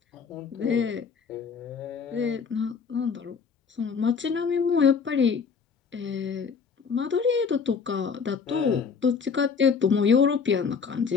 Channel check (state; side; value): quieter; right; 5.8 dB